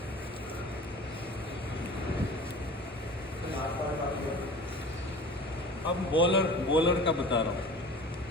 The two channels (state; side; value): normal; both; correlation 0.40